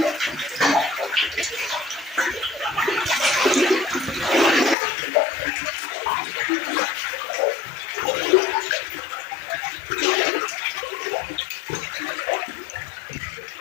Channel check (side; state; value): right; drops out; at 4.8 s